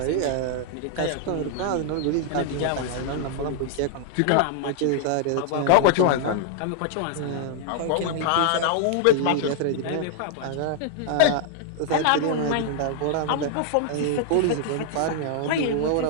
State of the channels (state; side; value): different; both; correlation -0.01